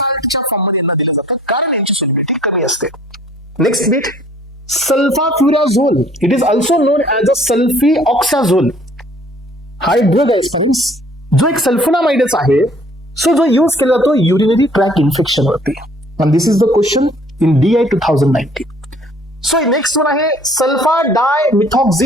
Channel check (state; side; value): normal; both; correlation 0.56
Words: फॉर्ममध्ये यांना दिलं जातं कारण यांची solubility कमी असते. Next bit, sulfafurazole. It is also known as a sulfioxazole. हा एक ड्रग आहे फ्रेंड्स, जो एक सल्फोनामाइडच आहे. सो जो यूज केला जातो युरिनरी ट्रॅक इन्फेक्शन वरती. And this is the question in DI 2019. So next one आहे